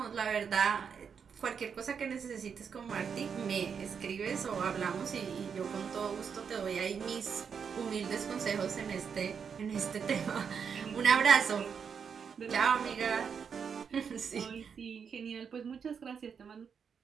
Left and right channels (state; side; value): quieter; left; 6.7 dB